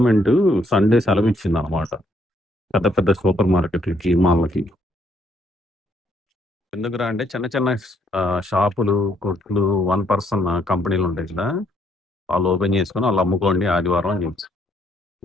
సండే సెలవు ఇచ్చింది అనమాట. పెద్ద పెద్ద సూపర్ మార్కెట్లకి, మాల్‌లకి. ఎందుకురా అంటే చిన్న చిన్న షాపులు, కొట్లు, వన్ పర్సన్ కంపెనీలు ఉంటాయి కదా! వాళ్ళు ఓపెన్ చేసుకొని వాళ్ళు అమ్ముకోండి ఆదివారం అని చెప్పి.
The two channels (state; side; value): normal; both; correlation 0.70